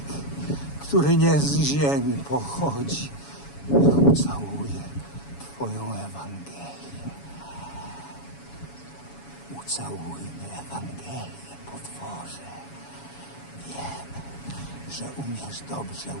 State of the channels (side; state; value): right; late; 7.1 ms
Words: który nie z ziemi pochodzi. Niech ucałuje Twoją Ewangelię. Ucałujmy Ewangelię, potworze. Wiem, że umiesz dobrze